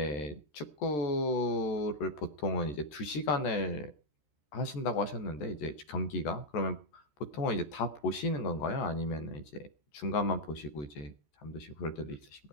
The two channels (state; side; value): late; right; 13 ms